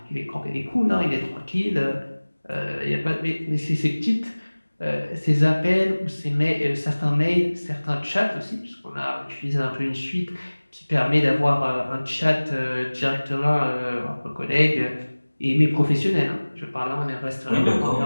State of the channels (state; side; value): inverted; both; correlation -1.00